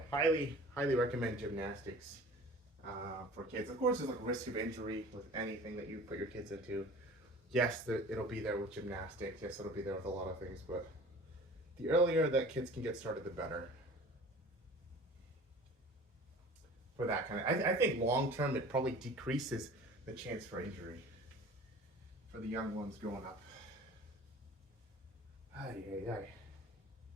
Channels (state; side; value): normal; both; correlation 0.43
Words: highly recommend gymnastics for kids. Of course, there's like risk of injury with anything that you put your kids into. Yes, it'll be there with gymnastics. Yes, it'll be there with a lot of things, but the earlier that kids can get started, the better. For that kind of, I think long term it probably decreases the chance for injury for the young ones growing up. Ay, ay, ay.